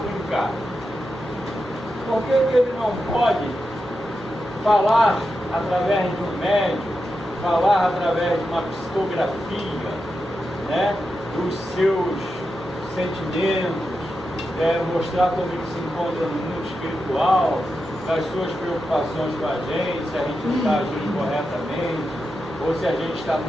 Por que ele não pode falar através de um médium, falar através de uma psicografia, né, dos seus sentimentos, mostrar como ele se encontra no mundo espiritual, das suas preocupações com a gente, se a gente não está agindo corretamente, ou se a gente está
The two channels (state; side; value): normal; both; correlation 0.89